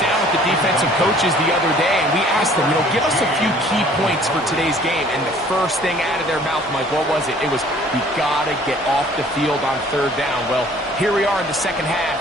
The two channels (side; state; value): both; normal; correlation 0.54